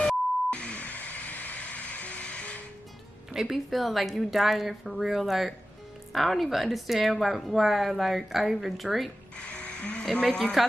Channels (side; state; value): both; normal; correlation 0.94